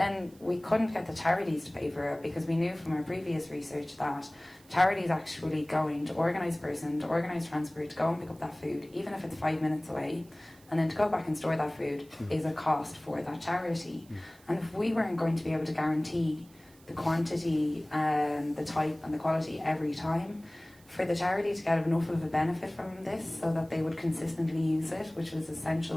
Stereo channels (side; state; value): right; noise; hiss, 27 dB below the sound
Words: we couldn't get the charities to pay for it because we knew from our previous research that charities actually going to organise a person, to organise transport, to go and pick up that food, even if it's 5 minutes away, and then to go back and store that food is a cost for that charity. And if we weren't going to be able to guarantee the quantity and the type and the quality every time, for the charity to get enough of a benefit from this so that they would consistently use it, which was